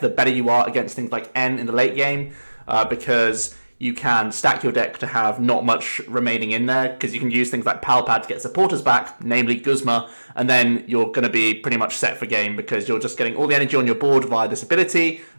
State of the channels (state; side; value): inverted; both; correlation -1.00